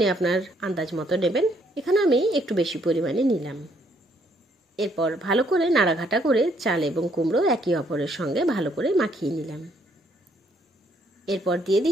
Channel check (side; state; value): both; normal; correlation 0.69